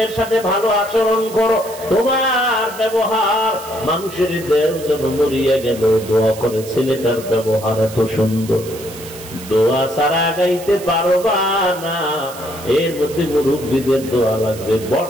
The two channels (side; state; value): right; noise; hiss, 16 dB below the sound